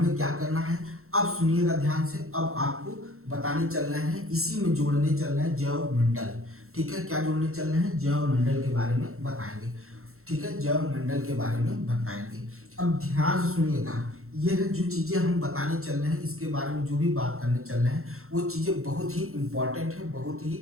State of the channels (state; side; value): late; left; 0.63 ms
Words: क्या करना है, अब सुनिएगा ध्यान से, अब आपको बताने चल रहे हैं, इसी में जोड़ने चल रहे हैं जैव मंडल। ठीक है, क्या जोड़ने चल रहे हैं, जैव मंडल के बारे में बताएंगे। ठीक है, जैव मंडल के बारे में बताएंगे। अब ध्यान से सुनिएगा, यह जो चीजें हम बताने चल रहे हैं, इसके बारे में जो भी बात करने चल रहे हैं, वो चीजें बहुत ही इंपॉर्टेंट है, बहुत